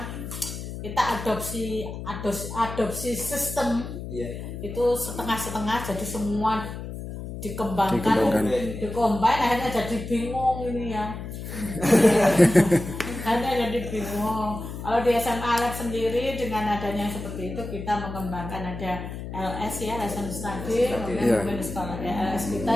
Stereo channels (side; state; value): left; noise; hum, 8 dB below the sound